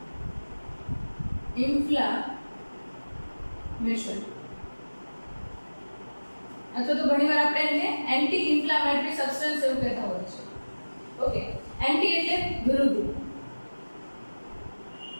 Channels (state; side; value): inverted; both; correlation -1.00